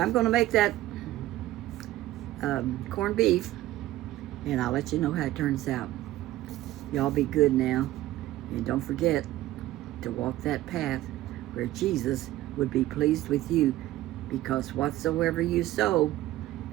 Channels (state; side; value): quieter; left; 15.6 dB